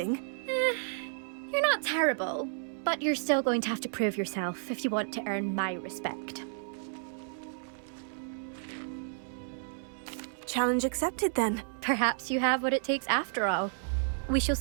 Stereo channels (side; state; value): left; silent; 57 dB below the other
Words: You're not terrible. But you're still going to have to prove yourself if you want to earn my respect. Challenge accepted, then. Perhaps you have what it takes after all. We shall